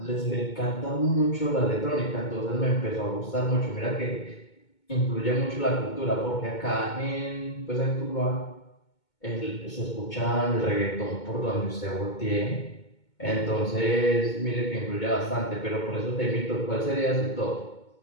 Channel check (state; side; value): late; right; 2.2 ms